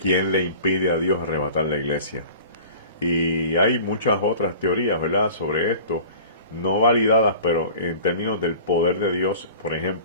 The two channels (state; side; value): inverted; both; correlation -0.42